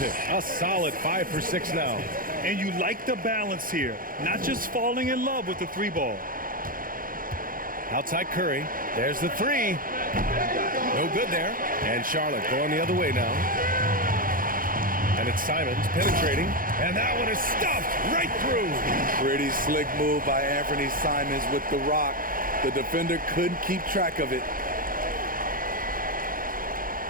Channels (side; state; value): left; late; 0.41 ms